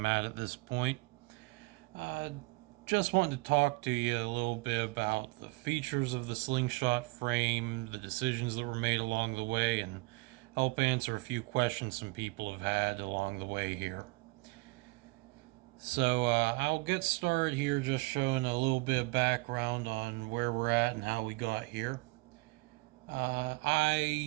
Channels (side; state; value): left; quieter; 24.6 dB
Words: at this point. Uh, just wanted to talk to you a little bit about the features of the slingshot frame, the decisions that were made along the way, and help answer a few questions some people have had along the way here. So I'll get started here just showing a little bit of background on where we're at and how we got here.